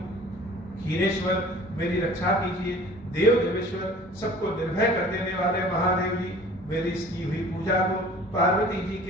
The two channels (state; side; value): normal; both; correlation 0.47